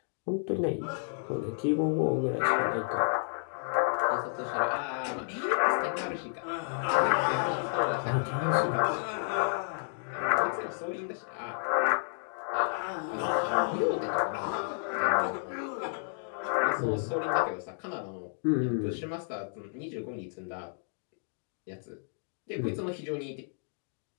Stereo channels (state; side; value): silent; right; digital silence